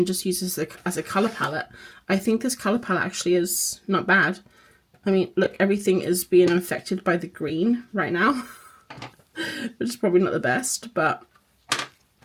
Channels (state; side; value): identical; both; correlation 1.00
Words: just use this as a colour palette. I think this colour palette actually is not bad. I mean, look, everything is being infected by the green right now, which is probably not the best, but